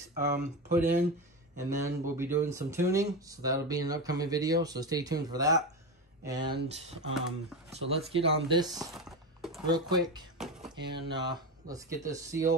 put in, and then we'll be doing some tuning. So that'll be an upcoming video. So stay tuned for that. And so let's get on this real quick, and let's get this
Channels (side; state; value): both; normal; correlation 0.18